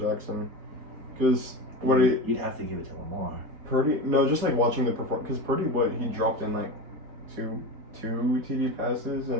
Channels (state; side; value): late; left; 4.1 ms